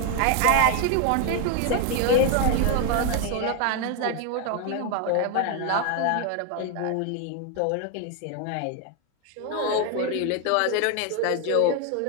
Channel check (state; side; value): different; both; correlation 0.01